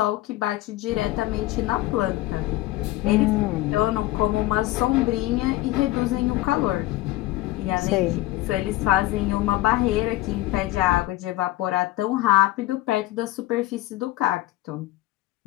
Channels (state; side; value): quieter; right; 17.0 dB